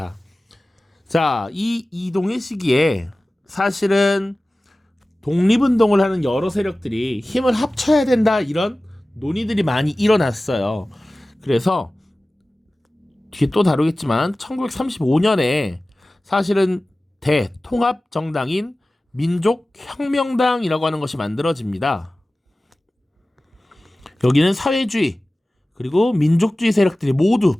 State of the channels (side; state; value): both; normal; correlation 0.97